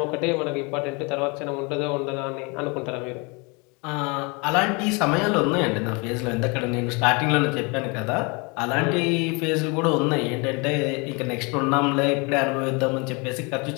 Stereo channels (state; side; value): quieter; right; 30.1 dB